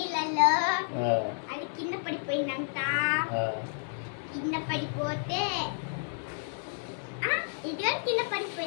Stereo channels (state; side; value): silent; right; digital silence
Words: అది కింద పడిపోయిందంట. కింద పడిపోతే ఇది కింద